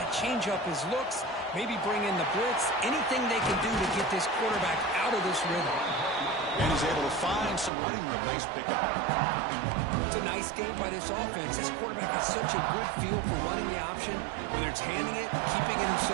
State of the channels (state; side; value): drops out; left; at 7.7 s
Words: change up his looks, maybe bring in the blitz, anything they can do to get this quarterback out of this rhythm. And he's able to find some running room. Nice pickup. It's a nice game by this offense. This quarterback has such a good feel for running the option. Whether it's handing it, keeping it